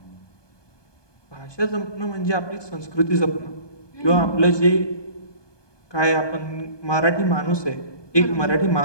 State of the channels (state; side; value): late; right; 1.2 ms